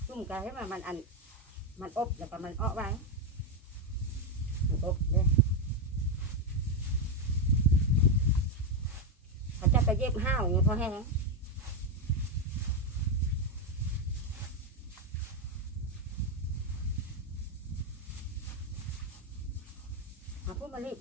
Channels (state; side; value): normal; both; correlation 0.05